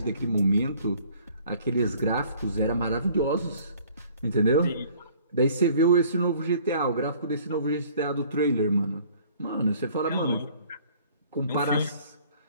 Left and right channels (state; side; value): inverted; both; correlation -0.55